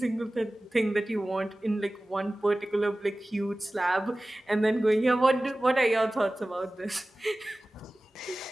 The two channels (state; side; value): normal; both; correlation 0.97